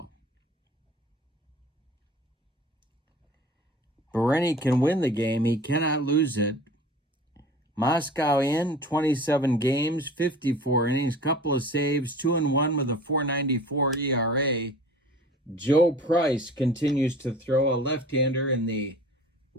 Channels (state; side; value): normal; both; correlation 0.43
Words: Berenyi can win the game. He cannot lose it. Moscow in 27 games, 54 innings, couple of saves, 2-1 with a 4.94 ERA. Joe Price continues to throw, a left-hander in the